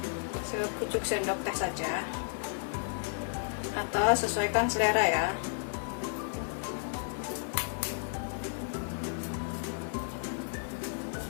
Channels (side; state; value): right; silent; 56 dB below the other